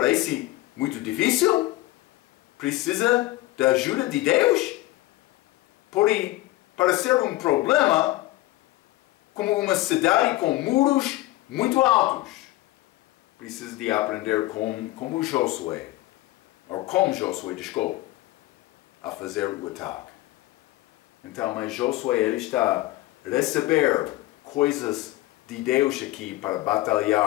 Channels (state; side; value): quieter; right; 18.0 dB